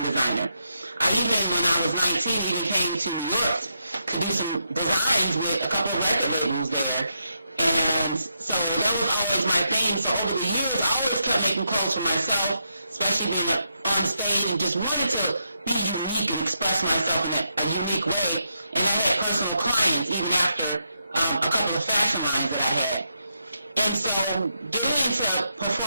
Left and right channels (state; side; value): inverted; both; correlation -0.82